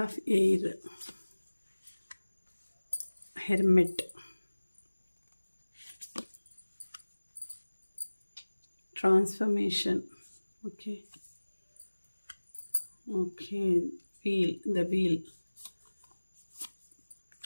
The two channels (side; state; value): both; inverted; correlation -1.00